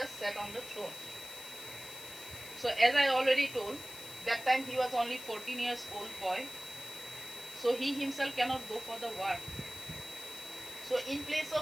sat on the throne. So as I already told, that time he was only 14 years old boy. So he himself cannot go for the war. So in place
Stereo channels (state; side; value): noise; left; hiss, 13 dB below the sound